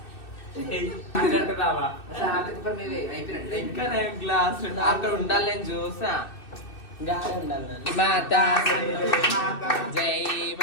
అంటున్నావా అయిపోయినట్టు గ్లాస్ అక్కడ ఉండాలి నేను చూసా గాలి ఉండాలి మాత జై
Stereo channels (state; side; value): late; right; 2.6 ms